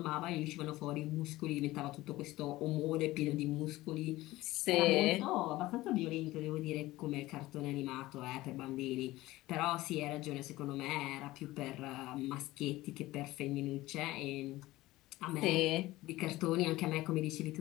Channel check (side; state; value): right; quieter; 17.8 dB